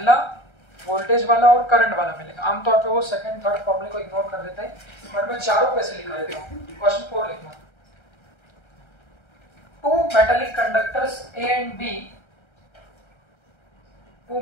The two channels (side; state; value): right; late; 1.3 ms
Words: वोल्टेज वाला और करंट वाला मिलेगा। आमतौर पे वो सेकंड थर्ड फॉर्मूले को इग्नोर कर देते हैं, बट मैं चारों पे से लिखा देता हूँ। क्वेश्चन 4 लिखना, to two metallic conductors A and B, two